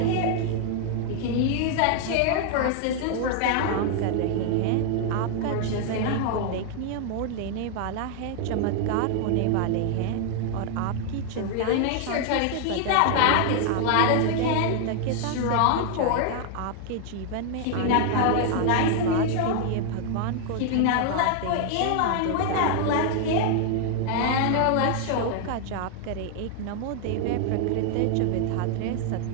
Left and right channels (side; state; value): both; different; correlation 0.00